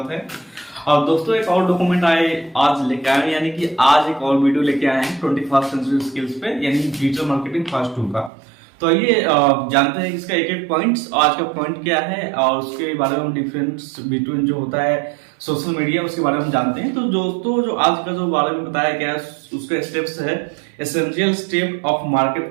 है। और दोस्तों एक और डॉक्यूमेंट आज लेके आए, यानी कि आज एक और वीडियो लेके आए हैं 21st सेंचुरी स्किल्स पे, यानी डिजिटल मार्केटिंग फास्ट 2 का। तो ये जानते हैं इसका एक एक पॉइंट्स, आज का पॉइंट क्या है और उसके बारे में हम डिफरेंस बिटवीन जो होता है सोशल मीडिया उसके बारे में हम जानते हैं। तो दोस्तों जो आज का जो बारे में बताया गया है उसका स्टेप्स है essential step of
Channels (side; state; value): left; drops out; at 8.3 s